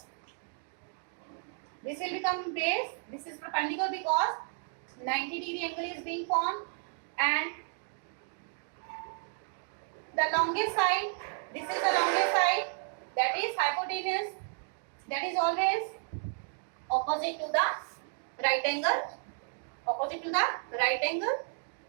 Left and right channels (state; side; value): silent; left; 56 dB below the other